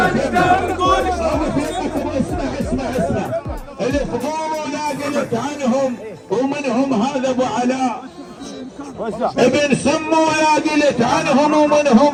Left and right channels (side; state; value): both; identical; correlation 1.00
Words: اسمع الفضول لا قلت عنهم ومنهم هذا ابو علاء ابن سمو لا قلت عنهم